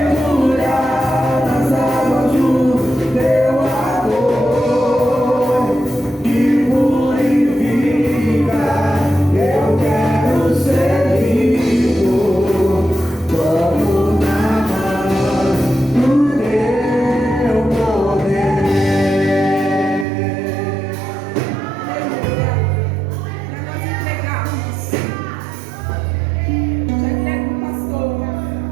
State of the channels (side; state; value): left; drops out; at 20.1 s